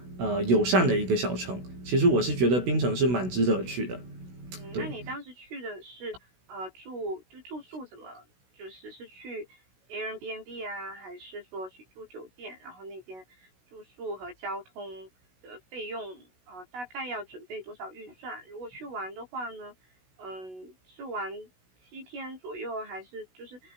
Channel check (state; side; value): late; left; 16 ms